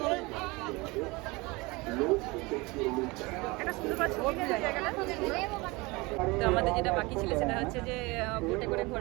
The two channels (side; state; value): left; quieter; 24.4 dB